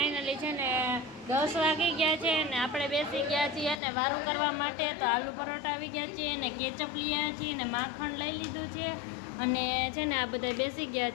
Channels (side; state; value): right; drops out; at 3.8 s